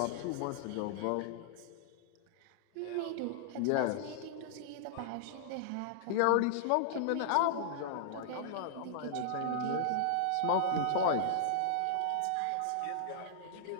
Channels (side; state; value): both; different; correlation -0.01